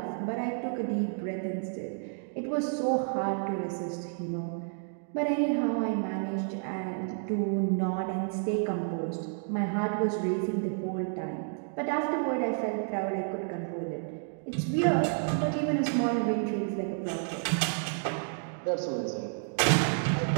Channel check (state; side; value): silent; left; 57 dB below the other